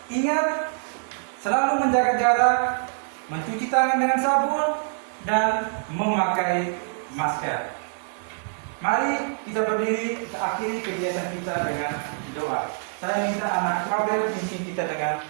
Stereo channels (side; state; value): left; silent; 62 dB below the other